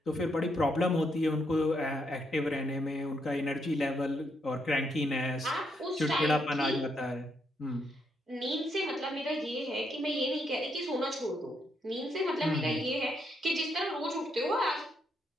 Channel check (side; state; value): both; normal; correlation 0.77